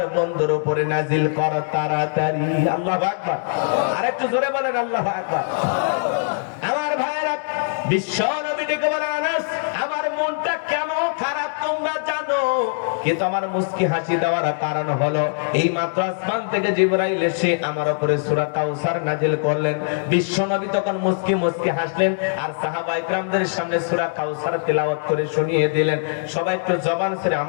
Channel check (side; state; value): right; silent; 64 dB below the other